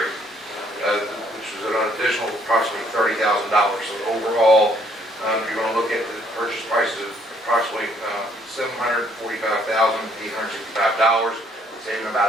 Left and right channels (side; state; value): both; normal; correlation 0.65